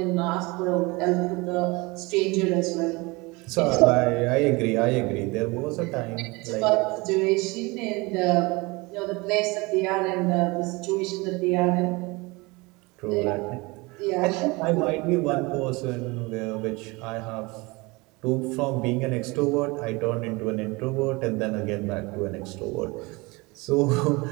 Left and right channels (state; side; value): quieter; left; 24.9 dB